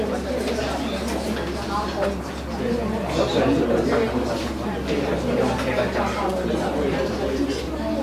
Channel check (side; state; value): both; identical; correlation 1.00